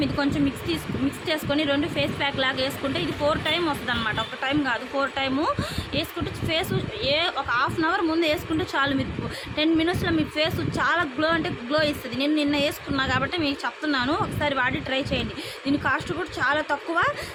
మిక్స్ చేసుకొని 2 ఫేస్ ప్యాక్ లాగా వేసుకుంటే ఇది 4 టైం వస్తుంది అనమాట. ఒక టైం కాదు 4 టైము వేసుకుంటే ఫేస్ ఒక హాఫ్ అన్ అవర్ ముందు వేసుకుంటే చాలు. మీరు 10 మినిట్స్లో మీ ఫేస్ చాలా గ్లో ఇస్తుంది. నేను నిన్న వేసుకున్నా కాబట్టి మీకు చెప్తున్నాను, ఒకసారి వాడి ట్రై చేయండి. దీని కాస్ట్ కూడా చాలా తక్కువ,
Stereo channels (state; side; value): identical; both; correlation 1.00